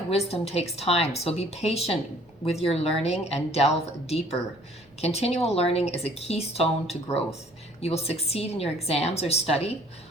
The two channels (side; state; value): both; normal; correlation 0.57